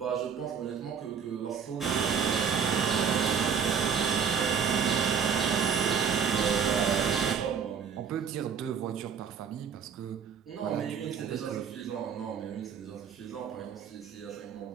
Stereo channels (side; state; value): left; quieter; 7.0 dB